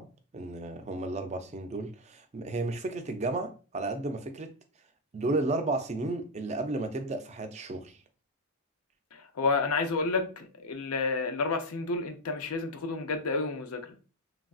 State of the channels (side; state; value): both; normal; correlation 0.02